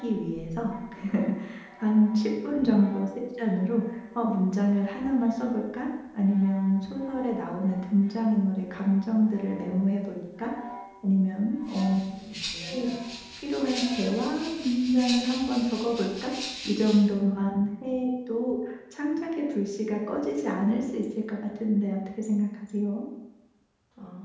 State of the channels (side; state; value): both; identical; correlation 1.00